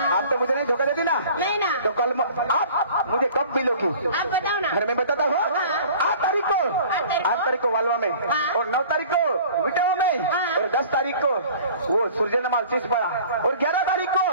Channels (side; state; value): both; inverted; correlation -0.47